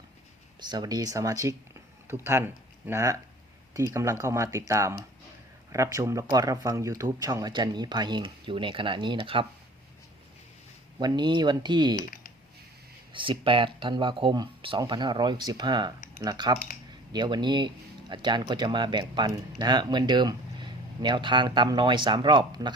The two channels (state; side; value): normal; both; correlation 0.47